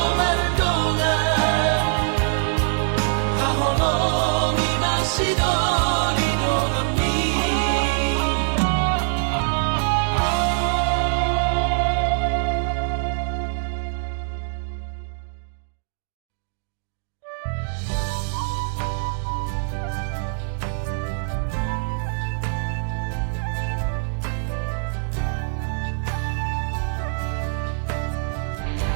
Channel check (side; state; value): left; silent; digital silence